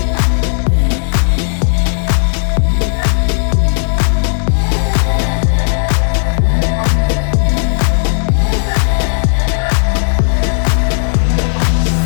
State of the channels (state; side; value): silent; right; digital silence